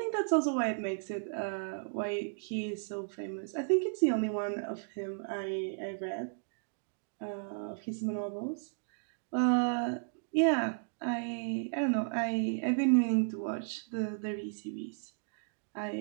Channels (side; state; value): left; silent; digital silence